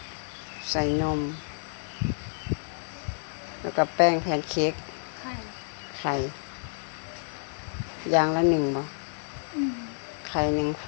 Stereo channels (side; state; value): right; silent; digital silence